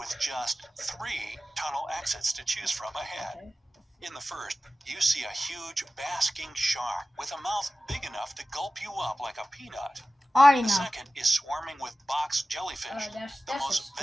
just 3 tunnel exits to choose from ahead. Okay. In the first, you see a huge basking shark with a mouth big enough to gulp you up like a peanut. Already The know. second is swarming with box jellyfish, That's the a most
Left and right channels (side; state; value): both; normal; correlation 0.95